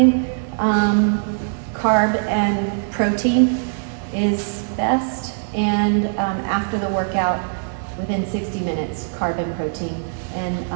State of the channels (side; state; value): left; silent; digital silence